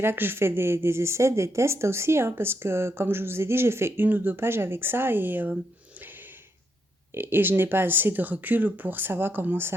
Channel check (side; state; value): both; normal; correlation 0.79